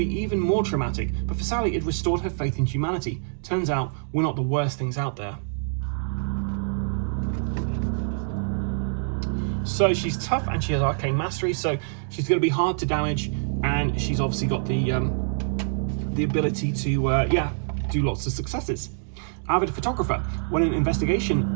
even more traumatic, but for Sally it restored her faith in humanity. Turns out, we're not the worst things out there. So she's tough and she has arcane mastery, so she's going to be hard to damage, and she's obviously got the ability to do lots of successes. Avid photographer. When an investigator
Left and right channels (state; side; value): silent; left; digital silence